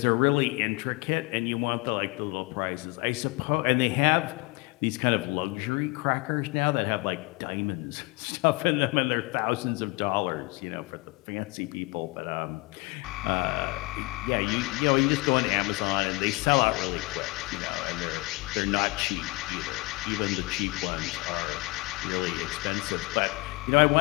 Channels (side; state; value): right; quieter; 24.8 dB